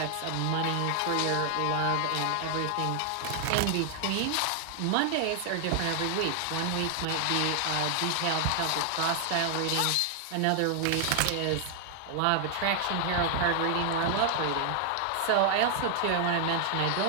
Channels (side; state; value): both; different; correlation 0.00